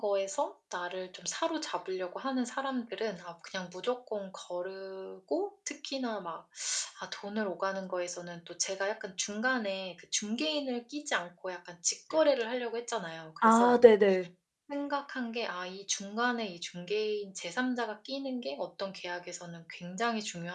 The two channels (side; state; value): both; identical; correlation 1.00